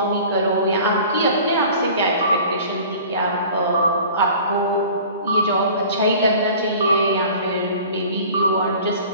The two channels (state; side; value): inverted; both; correlation -0.44